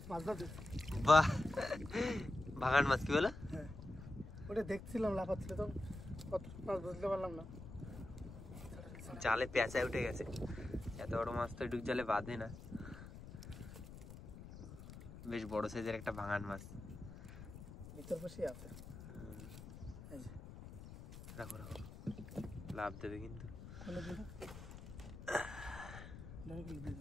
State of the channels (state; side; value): noise; left; rumble, 13 dB below the sound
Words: বাহ, ভাগান মাছ কি বলে? ওটা দেখছিলাম লাফাচ্ছিল তো, কত মাছ বুঝতে পারলাম না। জালে পেঁচায় উঠে গেছে, এত বড় মাছ তো ডুব জালে বাঁধে না। বেশ বড় সাইজের একটা ভাঙান মাছ ভিতর বসে আছে। রাখো রাখো, লাভ দেবে কিন্তু।